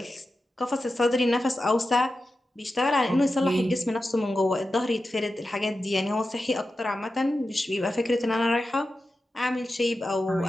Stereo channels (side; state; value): both; normal; correlation 0.92